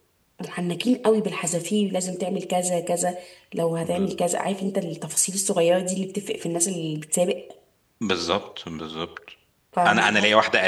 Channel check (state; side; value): identical; both; correlation 1.00